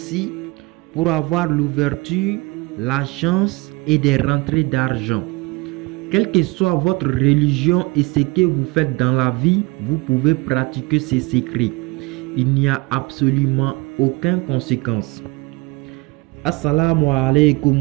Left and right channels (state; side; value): quieter; left; 24.9 dB